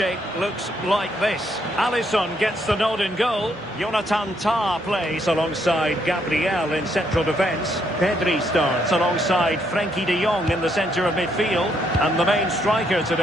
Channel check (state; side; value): normal; both; correlation 0.73